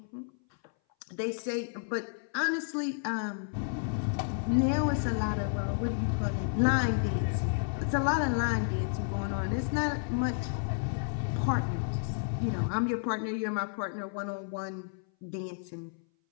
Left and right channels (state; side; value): silent; right; 57 dB below the other